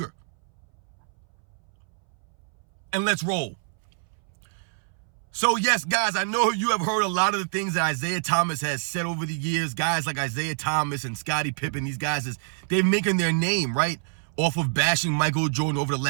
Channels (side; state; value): left; silent; 61 dB below the other